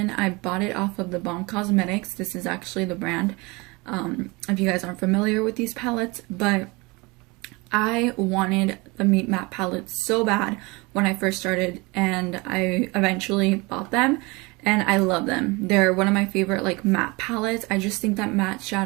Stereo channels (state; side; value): quieter; left; 25.5 dB